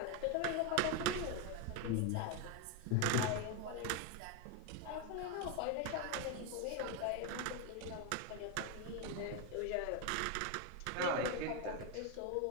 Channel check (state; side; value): different; both; correlation 0.02